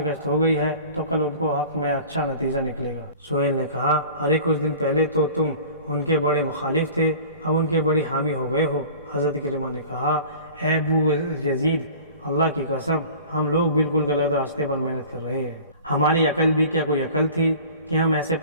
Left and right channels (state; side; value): inverted; both; correlation -0.43